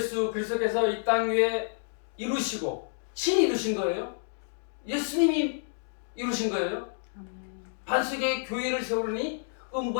그리스도께서 이 땅 위에 이루시고 친히 이루신 거예요. 예수님이 이루신 거예요. 반석에 교회를 세우니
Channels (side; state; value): right; silent; digital silence